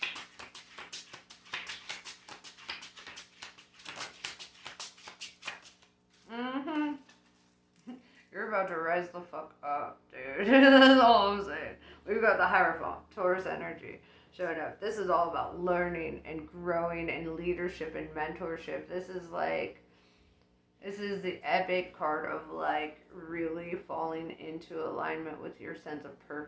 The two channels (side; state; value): both; identical; correlation 1.00